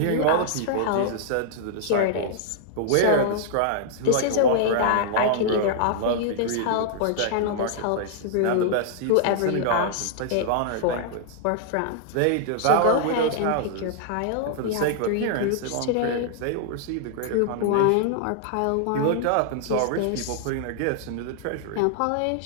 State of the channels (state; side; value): different; both; correlation -0.01